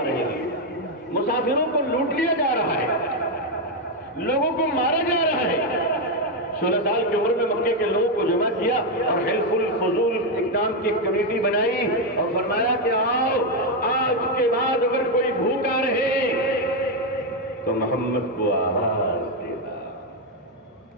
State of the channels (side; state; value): both; normal; correlation 0.04